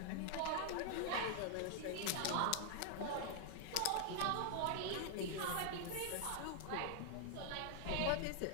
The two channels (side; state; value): both; different; correlation 0.00